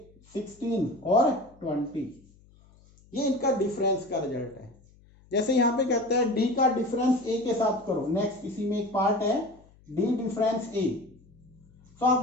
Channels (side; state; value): left; noise; hum, 28 dB below the sound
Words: 16 और 20। ये इनका डिफरेंस का रिजल्ट है। जैसे यहाँ पे कहता है डी का डिफरेंस ए के साथ करो, नेक्स्ट इसी में एक पार्ट है डी डिफरेंस ए। तो